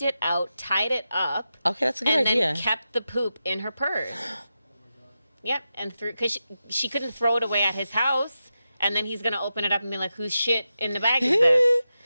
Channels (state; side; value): inverted; both; correlation -0.90